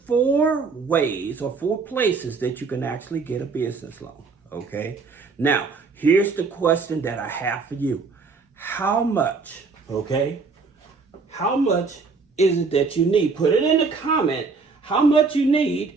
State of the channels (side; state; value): left; quieter; 4.5 dB